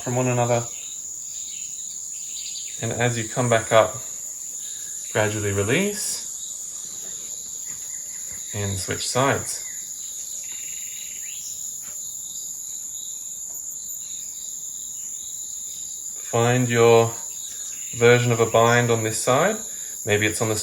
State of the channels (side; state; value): both; identical; correlation 1.00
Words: from one another. And as you come back up, gradually release and switch sides. Find your version of a bind on this side. Maybe it's on the